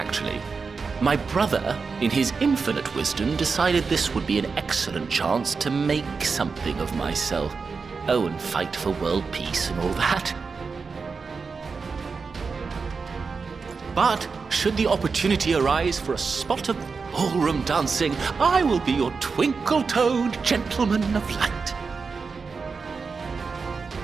My brother, in his infinite wisdom, decided this would be an excellent chance to make something of myself. Oh, and fight for world peace and all that. But, should the opportunity arise for a spot of ballroom dancing, I will be your twinkle-toed gentleman of light.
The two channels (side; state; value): left; quieter; 4.9 dB